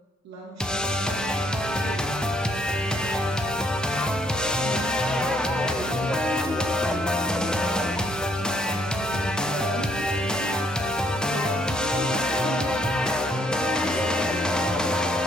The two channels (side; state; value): both; normal; correlation 0.68